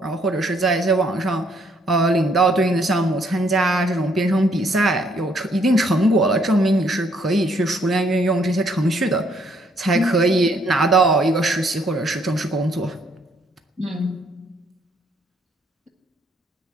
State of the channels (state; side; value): normal; both; correlation 0.68